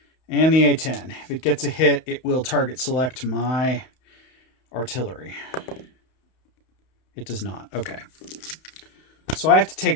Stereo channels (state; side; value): late; right; 31 ms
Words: And the A-10. If it gets a hit, it will target select my artillery. It does not. Okay. So I have to